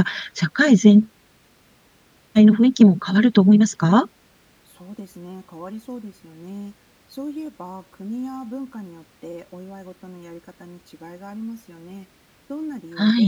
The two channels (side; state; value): both; identical; correlation 1.00